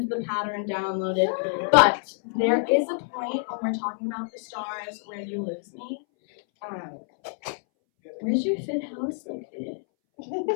the pattern downloaded. But there is a point when we're talking about the stars where you lose me. Where's your fifth house located?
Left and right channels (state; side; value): silent; right; 60 dB below the other